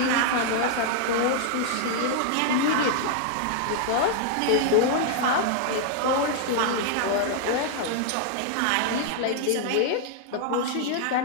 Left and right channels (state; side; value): different; both; correlation -0.01